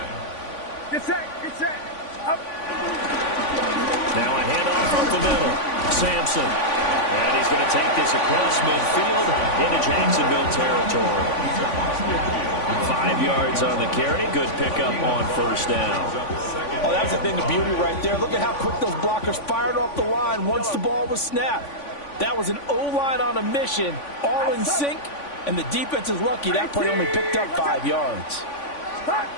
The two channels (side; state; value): right; late; 3.5 ms